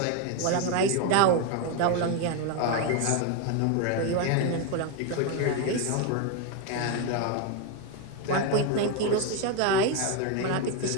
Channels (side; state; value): both; different; correlation 0.02